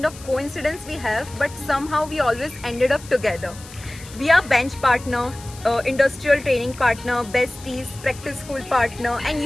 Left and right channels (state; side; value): noise; left; hiss, 18 dB below the sound